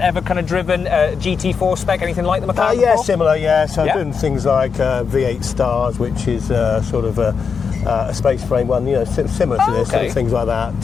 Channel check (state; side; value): quieter; right; 5.9 dB